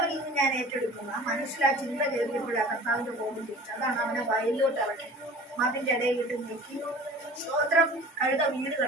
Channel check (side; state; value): both; normal; correlation 0.43